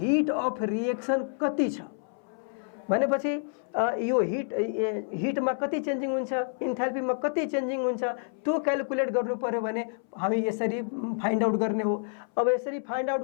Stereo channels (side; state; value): right; silent; 59 dB below the other